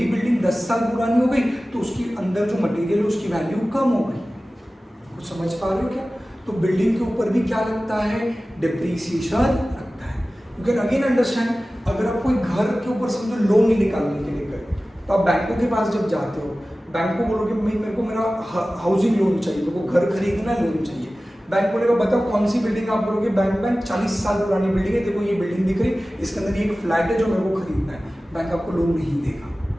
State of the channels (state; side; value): normal; both; correlation 0.96